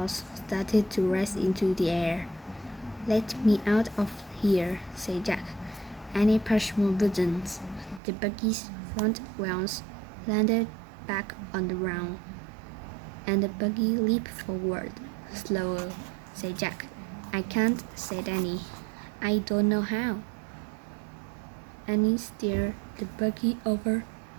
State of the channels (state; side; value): drops out; left; at 8.0 s